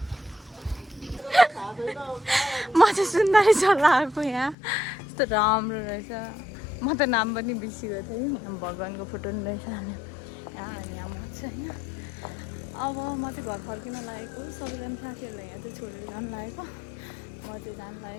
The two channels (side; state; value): right; drops out; at 4.5 s